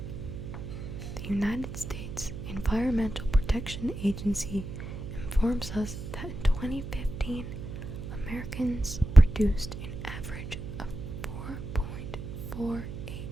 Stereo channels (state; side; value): noise; right; hum, 8 dB below the sound